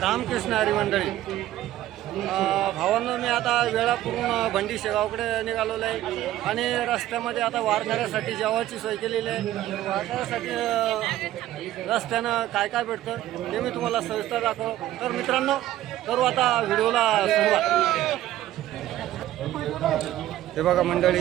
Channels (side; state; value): left; quieter; 13.9 dB